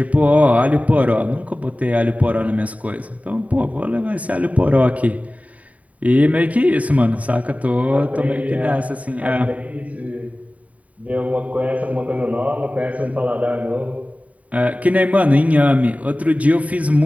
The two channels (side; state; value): left; late; 0.069 ms